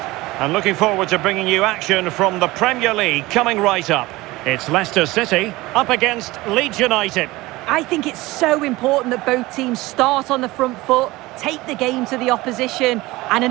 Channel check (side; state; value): left; quieter; 20.0 dB